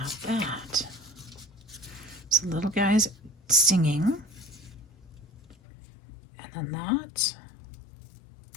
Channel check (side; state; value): right; drops out; at 5.6 s